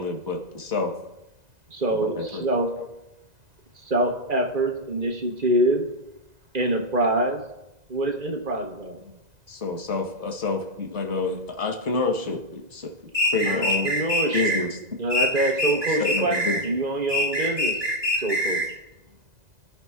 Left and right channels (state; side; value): late; left; 2.0 ms